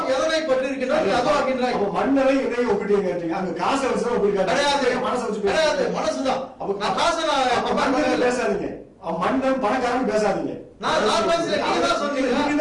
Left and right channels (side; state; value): both; identical; correlation 1.00